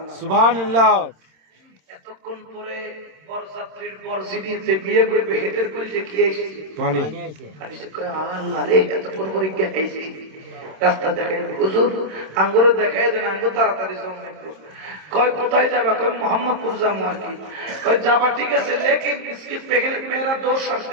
সুবহানাল্লাহ এতক্ষণ পরে বরযাত্রীর বরজিনিতে বিয়ে করবে হেতের কইছে কি আইছে পানি পানি সে কয় আল্লাহ রে এতক্ষণ পরে কি আইছে রাস্তা দেখাই হুজুর আঙ্গুরে দেখাই দেন আঙ্গুর তাড়াতাড়ি জমনে কয় কোথায় যাবে কয় মোহাম্মদপুর যাবো আর কি কয় যাবা ঠিক আছে লেকিন इसके पहले मेरा दो शर्त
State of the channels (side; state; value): left; late; 26 ms